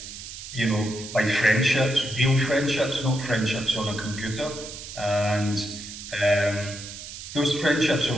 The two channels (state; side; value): noise; right; hiss, 11 dB below the sound